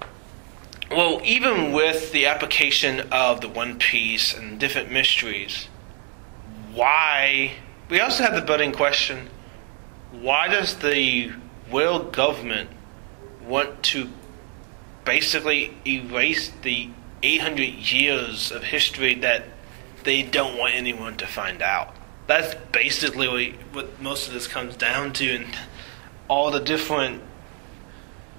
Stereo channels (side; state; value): left; quieter; 36.2 dB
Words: Well, even with the application of the One Piece and different mysteries, we also have the budding question, why does the world government want to basically erase the 800 years of history that they don't want anyone to find out? That's basically what most of this comes down to, and all the different